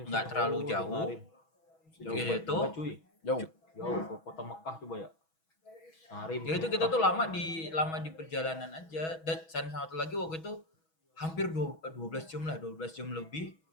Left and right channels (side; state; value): right; late; 6.2 ms